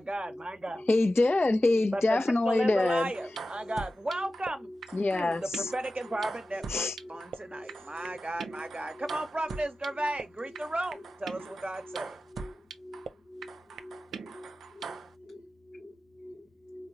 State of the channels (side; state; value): both; normal; correlation 0.94